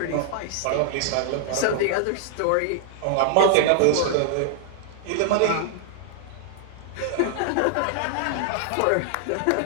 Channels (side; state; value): both; different; correlation -0.01